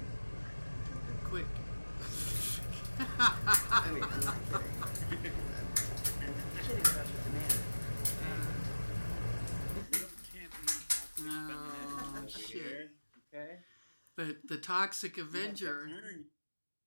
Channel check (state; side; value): inverted; both; correlation -1.00